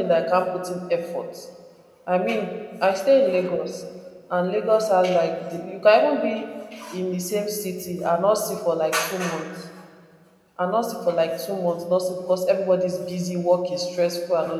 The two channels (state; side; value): identical; both; correlation 1.00